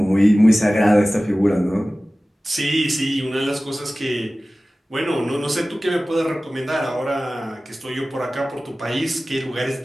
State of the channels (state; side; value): normal; both; correlation 0.97